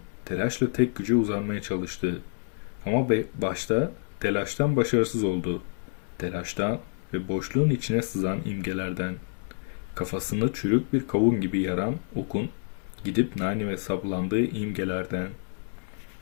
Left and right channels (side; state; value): right; silent; 59 dB below the other